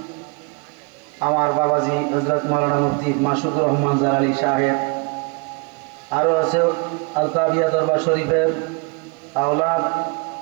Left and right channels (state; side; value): quieter; left; 31.7 dB